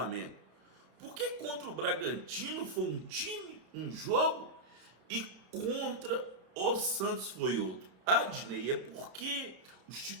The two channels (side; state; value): left; late; 31 ms